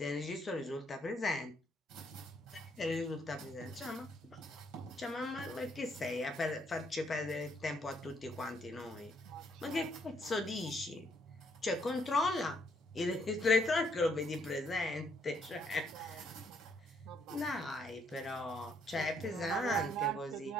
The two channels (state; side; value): normal; both; correlation 0.70